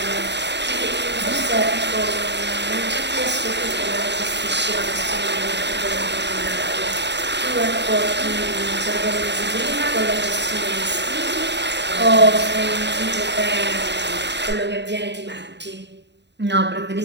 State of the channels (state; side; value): late; left; 0.51 ms